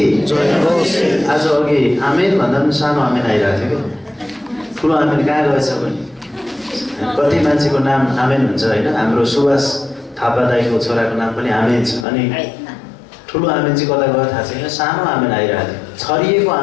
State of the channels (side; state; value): right; drops out; at 12.1 s